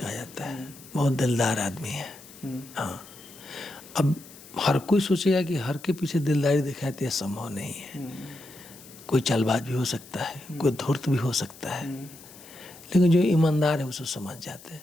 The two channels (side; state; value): left; noise; hiss, 20 dB below the sound